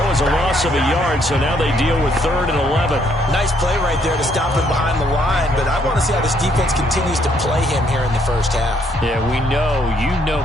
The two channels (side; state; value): both; normal; correlation 0.69